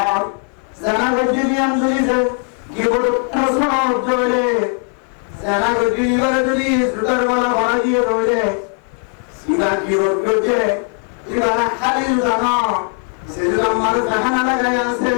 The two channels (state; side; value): quieter; right; 38.4 dB